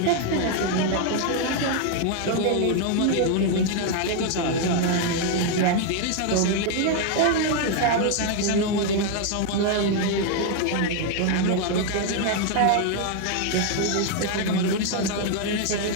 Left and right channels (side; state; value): both; different; correlation 0.00